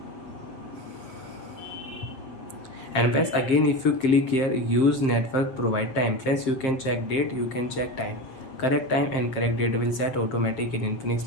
And friends, again if you click here use network provide time, friends, you can check date, you can check time. Correct time and correct date will set automatic in Infinix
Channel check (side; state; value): right; late; 7.6 ms